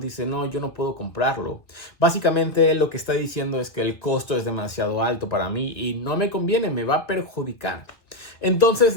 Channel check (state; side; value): late; right; 1.7 ms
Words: no, yo no puedo comprarlo. Básicamente lo que está diciendo es que el costo es demasiado alto para mí y no me conviene, me va a perjudicar.